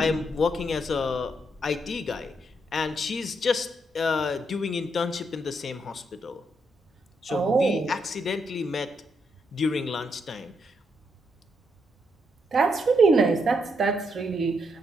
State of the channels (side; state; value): both; normal; correlation 0.78